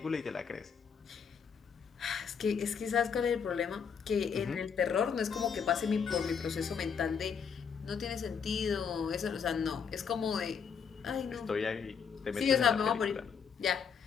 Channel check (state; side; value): quieter; right; 6.6 dB